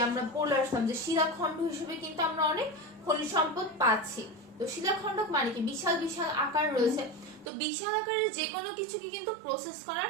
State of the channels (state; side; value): drops out; left; at 7.5 s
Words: আমরা বলে আসলাম যে শিলাখণ্ড হিসেবে কিন্তু আমরা অনেক খনিজ সম্পদ পাচ্ছি। তো শিলাখণ্ড মানে কি বিশাল বিশাল আকার রয়েছে, তো বিশাল আকারের যে কোনো কিছুকে কিন্তু প্রসেস করা